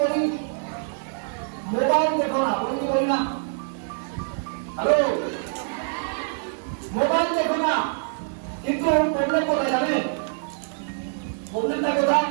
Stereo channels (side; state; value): left; silent; 58 dB below the other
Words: বলি? মোবাইল দেখো না, বলি কি বলি না? হ্যালো, মোবাইল দেখো না। কিন্তু প্রবলেম কোথায় জানেন? প্রবলেমটা কোথায়?